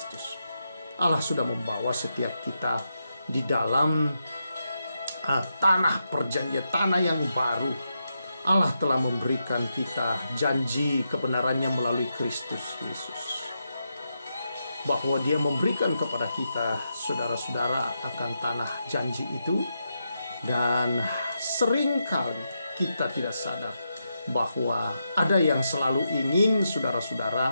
Allah sudah membawa setiap kita di dalam tanah perjanjian, tanah yang baru. Allah telah memberikan kita janji kebenarannya melalui Kristus Yesus, bahwa Dia memberikan kepada kita, saudara-saudara, akan tanah janji itu. Dan seringkali kita tidak sadar bahwa ada yang selalu ingin, saudara-saudara,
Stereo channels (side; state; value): both; inverted; correlation -0.85